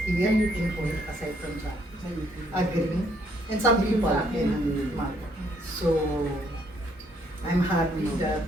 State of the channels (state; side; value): normal; both; correlation 0.69